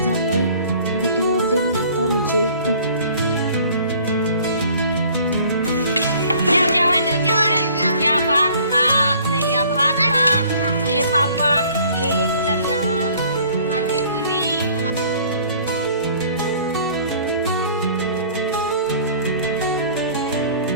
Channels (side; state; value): both; inverted; correlation -0.53